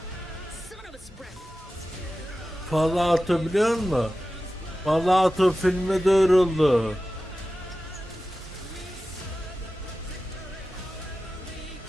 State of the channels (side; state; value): both; normal; correlation 0.94